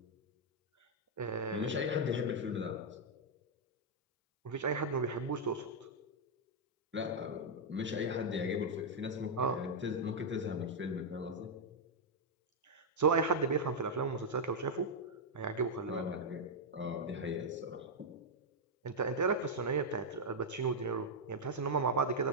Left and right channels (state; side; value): normal; both; correlation -0.03